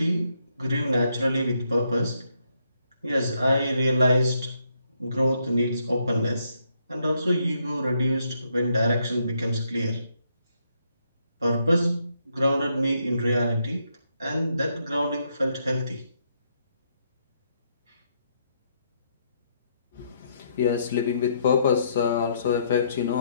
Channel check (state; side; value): inverted; both; correlation -0.75